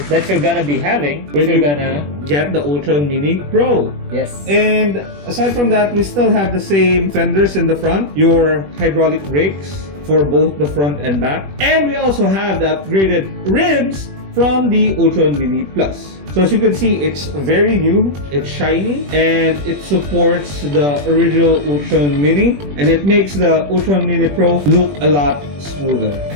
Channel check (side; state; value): left; late; 21 ms